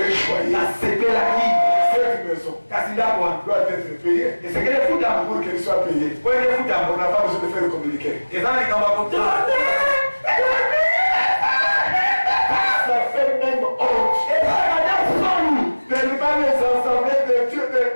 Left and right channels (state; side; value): inverted; both; correlation -1.00